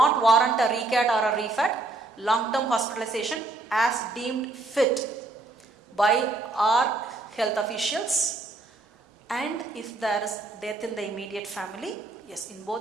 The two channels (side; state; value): left; quieter; 3.2 dB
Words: warrant a recat or a refat. Long-term hospitalization as deemed fit by our health officials, and if there is death in the immediate family, yes, in both